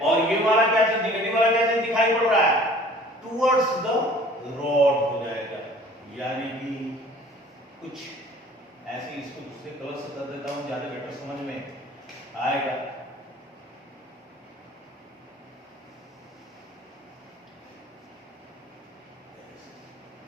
ये वाला क्या चीज, निगेटिव वाला क्या चीज दिखाई पड़ रहा है, टुवर्ड्स द रॉड हो जाएगा। यानी कि कुछ ऐसे, इसको दूसरे कलर से कर देता हूं, ज्यादा बेटर समझ में आएगा।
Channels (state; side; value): normal; both; correlation 0.50